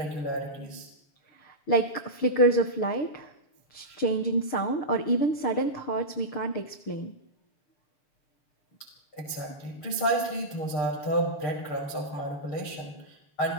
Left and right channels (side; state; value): right; late; 6.7 ms